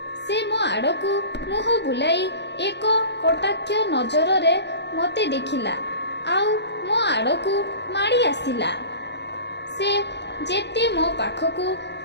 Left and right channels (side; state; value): right; late; 0.50 ms